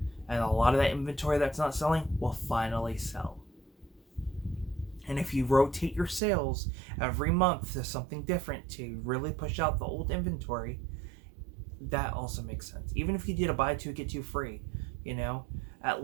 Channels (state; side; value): drops out; left; at 6.2 s